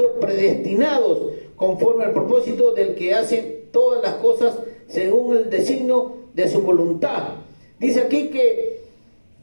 predestinados conforme al propósito del que hace todas las cosas según el designio de su voluntad. Dice aquí que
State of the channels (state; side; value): inverted; both; correlation -1.00